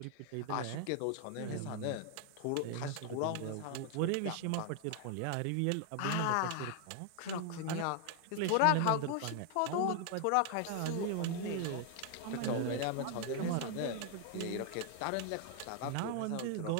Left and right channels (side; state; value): both; different; correlation 0.00